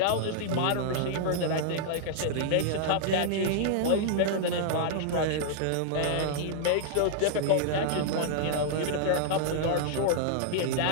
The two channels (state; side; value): different; both; correlation -0.01